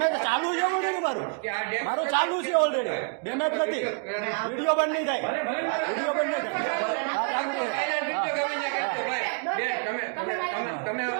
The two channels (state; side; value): quieter; left; 37.5 dB